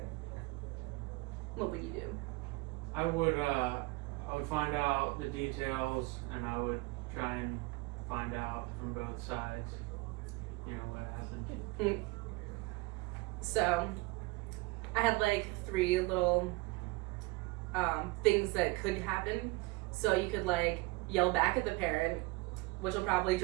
What would you do? I would find out the details, and I would try and find out from both sides, you know, what happened. So, I had like 3 little things that could happen. So you could like yell back at the parent, which will probably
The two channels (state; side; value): quieter; left; 24.0 dB